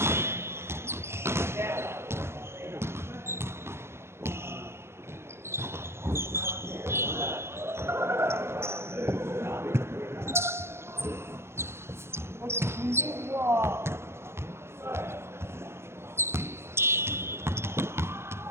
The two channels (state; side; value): late; left; 0.12 ms